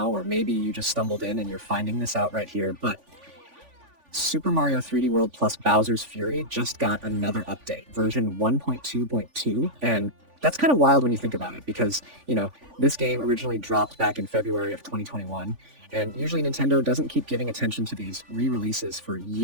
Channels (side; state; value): left; late; 3.5 ms